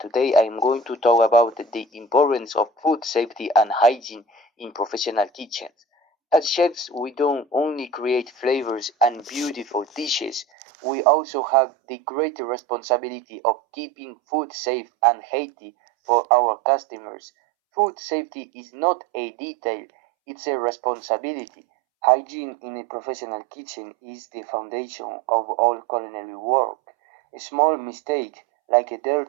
I am going to talk about the importance of food safety and hygiene in professional kitchens. As chefs, we don't only create flavors and beautiful dishes, we also have the great responsibility of keeping food safe and healthy for our customers. Food safety is not a detail, it's a responsibility. Hygiene in a professional kitchen is the foundation of all culinary work. A small mistake, like a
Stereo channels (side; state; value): left; drops out; at 10.5 s